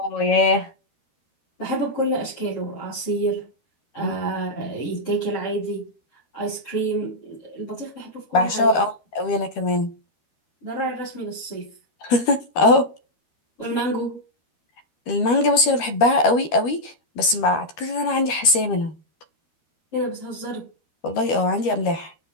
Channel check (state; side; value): late; right; 13 ms